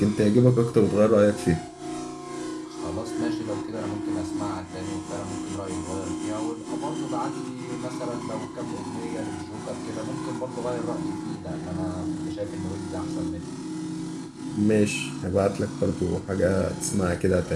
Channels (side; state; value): both; identical; correlation 1.00